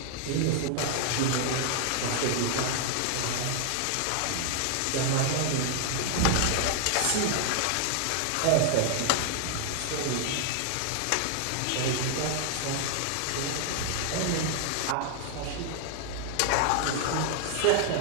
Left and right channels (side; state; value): both; different; correlation 0.00